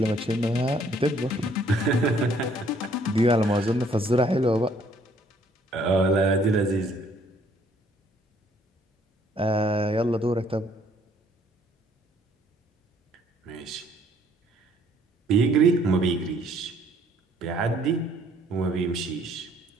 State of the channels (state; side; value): normal; both; correlation 0.63